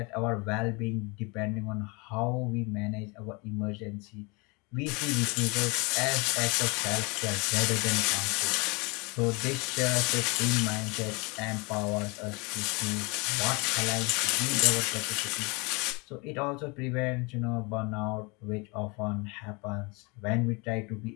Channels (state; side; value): quieter; right; 28.7 dB